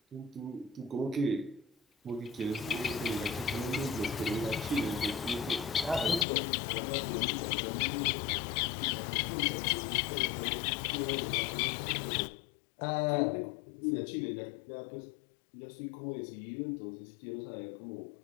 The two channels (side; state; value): right; drops out; at 6.2 s